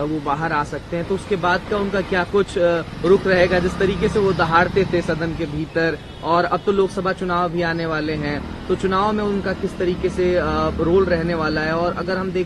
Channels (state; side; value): identical; both; correlation 1.00